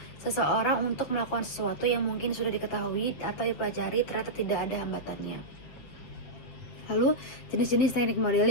seseorang untuk melakukan sesuatu yang mungkin sudah diketahui atau dipelajari ternyata tidak ada hambatannya. Lalu jenis-jenis teknik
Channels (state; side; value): late; right; 7.7 ms